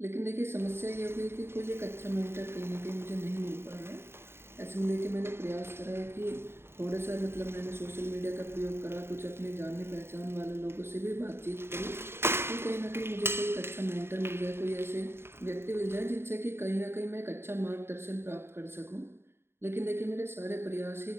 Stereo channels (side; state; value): left; late; 0.11 ms